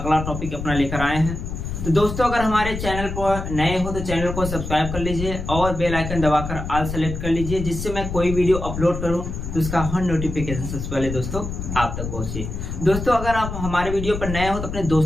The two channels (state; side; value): noise; left; rumble, 6 dB below the sound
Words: टॉपिक अपना लेकर आए हैं। तो दोस्तों अगर हमारे चैनल पर नए हो तो चैनल को सब्सक्राइब कर लीजिए और बेल आइकन दबाकर ऑल सेलेक्ट कर लीजिए, जिससे मैं कोई वीडियो अपलोड करूं तो उसका हर नोटिफिकेशन सबसे पहले दोस्तों आप तक पहुंचे। दोस्तों अगर आप हमारे वीडियो पर नए हो तो अपने